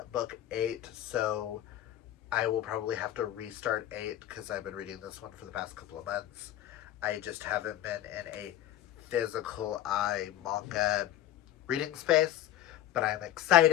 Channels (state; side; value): quieter; right; 13.0 dB